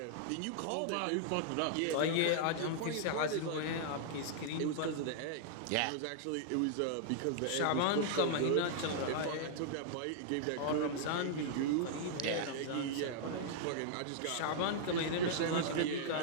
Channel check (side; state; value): both; different; correlation -0.01